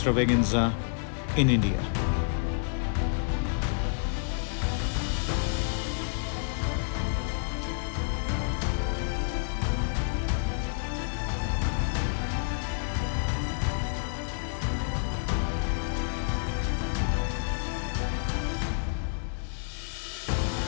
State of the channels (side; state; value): right; silent; 58 dB below the other